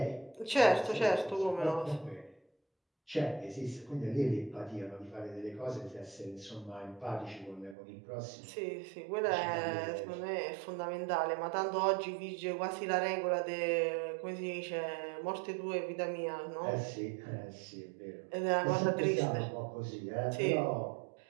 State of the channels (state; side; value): drops out; left; at 7.8 s